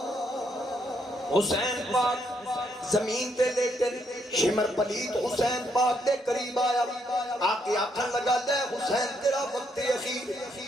حسین پاک زمین تے لیٹے، شمر پلیت حسین پاک دے قریب آیا، آکے آکھن لگا لے حسین تیرا وقت اخیر،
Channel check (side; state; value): both; normal; correlation 0.74